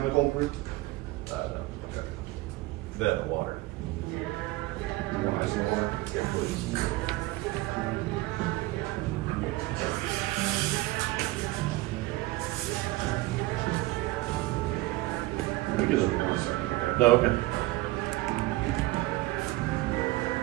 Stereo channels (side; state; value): left; quieter; 19.8 dB